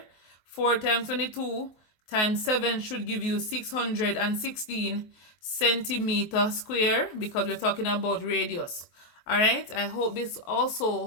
4 times 22 times 7 should give you 616 centimeter square, because we're talking about radius. Alright, I hope this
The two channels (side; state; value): right; late; 23 ms